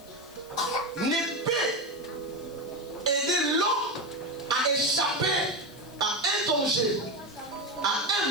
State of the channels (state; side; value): noise; left; hiss, 23 dB below the sound